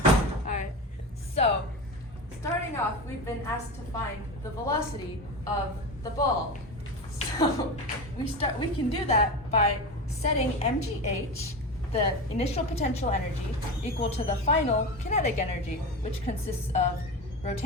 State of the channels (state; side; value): normal; both; correlation 0.24